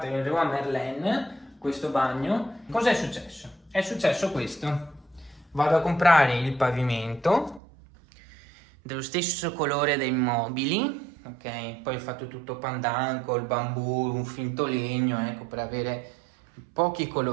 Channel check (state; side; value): drops out; left; at 7.6 s